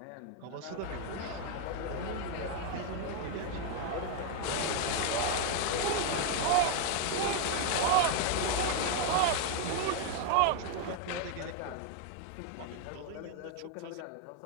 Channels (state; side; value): different; both; correlation 0.01